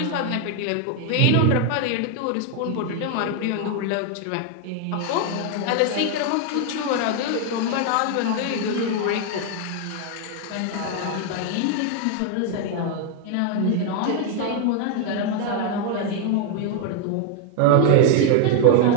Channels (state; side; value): different; both; correlation 0.01